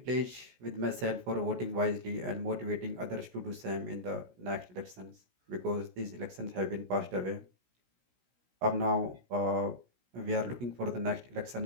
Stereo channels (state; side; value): late; left; 16 ms